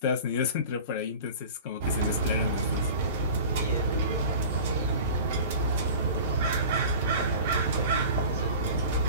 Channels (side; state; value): both; inverted; correlation -0.39